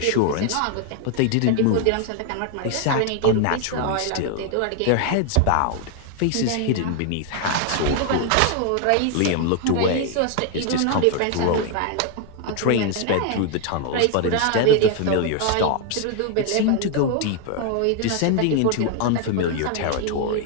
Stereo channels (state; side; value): different; both; correlation 0.00